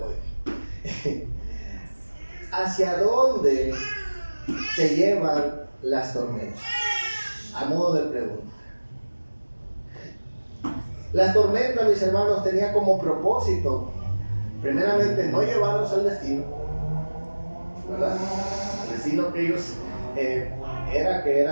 ¿Hacia dónde te llevan las tormentas? A modo de pregunta. La tormenta, mis hermanos, tenía como propósito, primeramente, no llevarlos al destino, ¿verdad? El destino que ellos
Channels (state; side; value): inverted; both; correlation -1.00